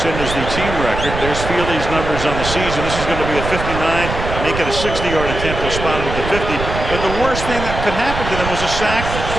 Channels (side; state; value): right; noise; rumble, 6 dB below the sound